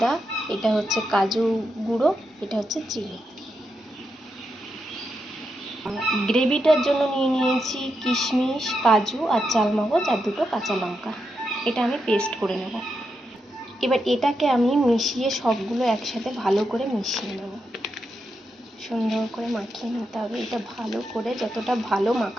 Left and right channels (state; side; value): normal; both; correlation 0.85